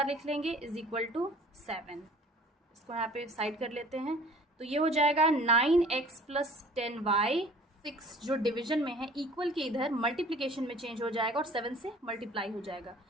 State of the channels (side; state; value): both; normal; correlation 0.49